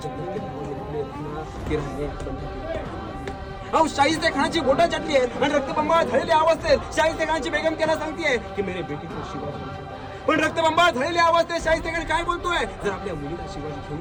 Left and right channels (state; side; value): identical; both; correlation 1.00